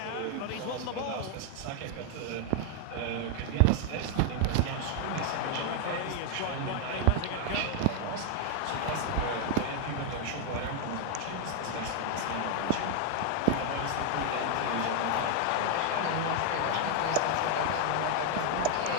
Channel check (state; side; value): different; both; correlation 0.00